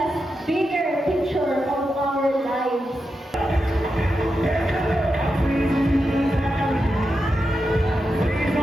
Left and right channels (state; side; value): normal; both; correlation 0.88